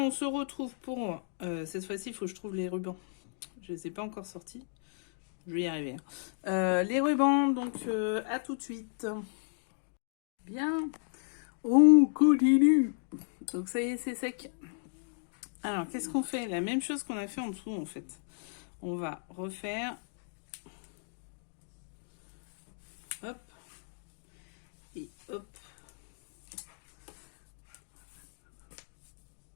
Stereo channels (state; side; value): silent; right; digital silence